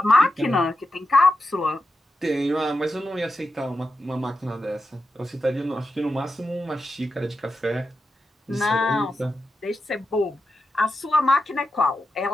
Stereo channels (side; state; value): both; normal; correlation 0.89